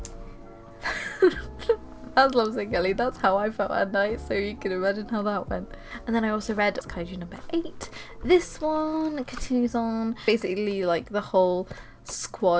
That's Lovesick Ellie, that's how I felt at night, so you can imagine how that went. And then I also read Kaiju No.8. This one continues on, basically like the whole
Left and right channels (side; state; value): both; identical; correlation 1.00